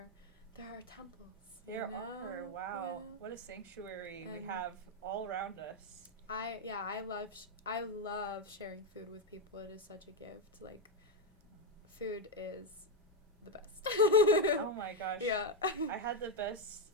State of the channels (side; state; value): both; normal; correlation 0.04